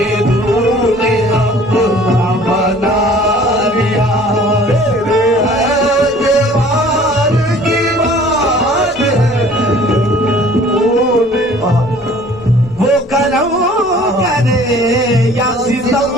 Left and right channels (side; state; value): both; normal; correlation 0.51